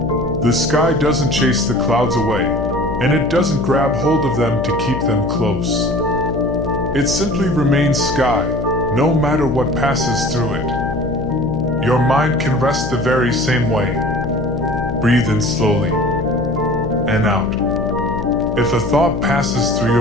"The sky doesn't chase the clouds away, and it doesn't grab hold of them to keep them close. It simply remains sky, no matter what passes through it. Your mind can rest the very same way. Breathe in slowly and out. If a thought passes through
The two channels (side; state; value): left; noise; hum, 5 dB below the sound